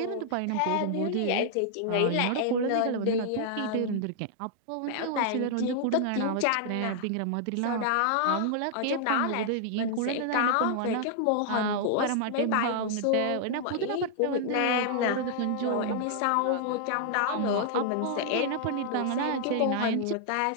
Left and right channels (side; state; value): both; different; correlation 0.00